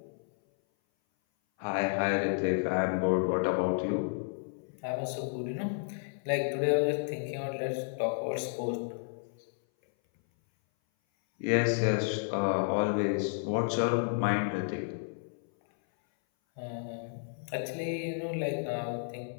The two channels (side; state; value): right; silent; 57 dB below the other